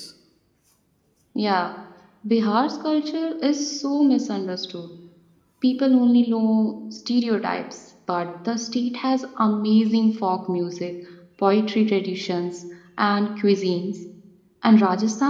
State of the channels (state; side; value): identical; both; correlation 1.00